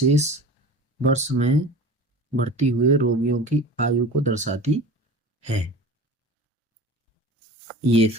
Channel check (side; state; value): both; normal; correlation 0.36